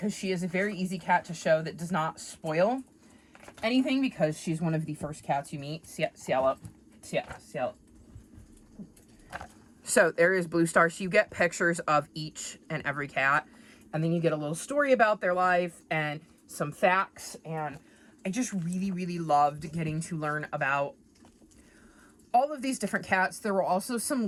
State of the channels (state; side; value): identical; both; correlation 1.00